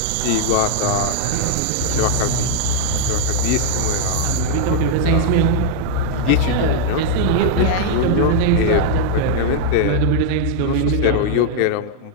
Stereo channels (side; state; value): both; different; correlation -0.01